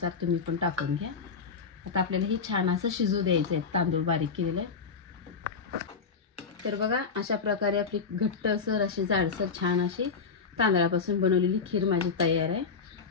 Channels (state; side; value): quieter; right; 5.3 dB